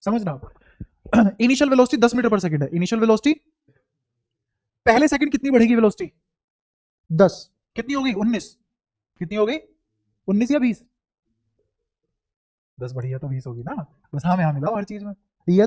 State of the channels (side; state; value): both; identical; correlation 1.00